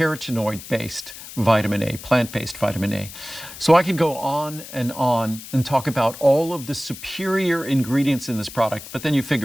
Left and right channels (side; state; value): left; noise; hiss, 14 dB below the sound